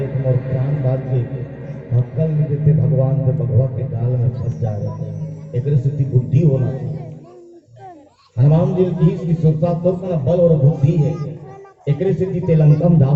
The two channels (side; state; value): both; identical; correlation 1.00